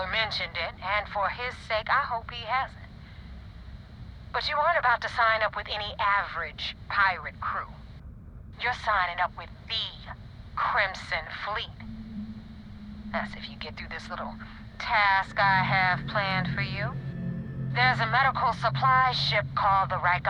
mentioned it, and for his sake, I hope he hasn't. But you aren't about to sign up with any average pirate crew. You're signing up with the Crimson Fleet. That's if you get through this little task I have planned for you. There's a medical supply ship called the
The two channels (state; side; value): identical; both; correlation 1.00